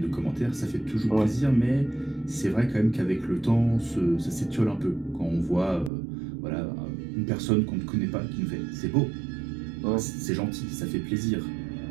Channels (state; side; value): drops out; left; at 5.9 s